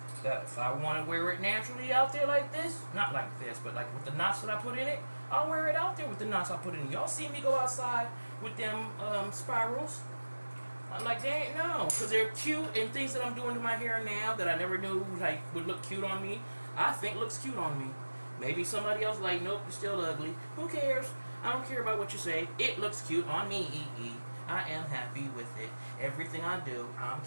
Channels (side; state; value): both; inverted; correlation -1.00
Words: that if I want to wear it naturally out there like this, not like this, but like with the knots that I put in it, I'll wear it out there with the knots I put in. Y'all see me go outside with them spirals? I'm like, they ain't no, because they're cute and things that I'm doing to my hair now that I never knew like would look cute on me. I think looks cute on me. Maybe somebody else like, nope, you're still ugly. Who cares? I don't care about what you say. It looks cute on me. I am happy with it. Everything I do, I'm